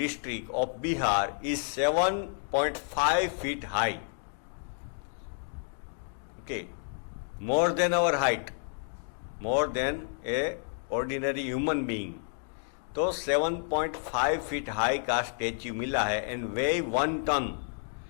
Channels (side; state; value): right; silent; digital silence